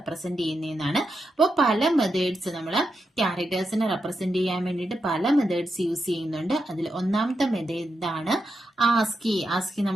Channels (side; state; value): both; normal; correlation 0.86